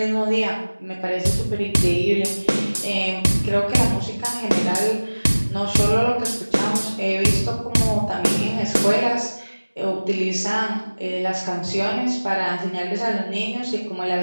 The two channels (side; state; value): both; inverted; correlation -1.00